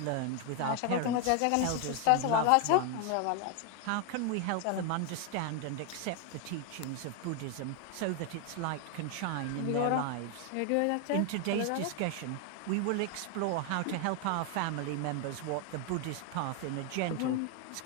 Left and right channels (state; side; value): different; both; correlation 0.01